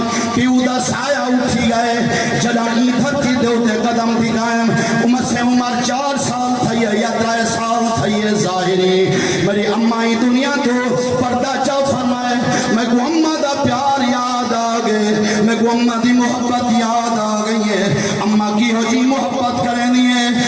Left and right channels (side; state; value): both; identical; correlation 1.00